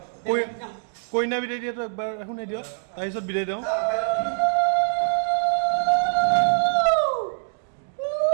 কইনা বিদায় দিয়াটো একবাৰ শুনাই দিয়ক তাৰপিছত বিদায় দিওঁ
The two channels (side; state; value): left; silent; digital silence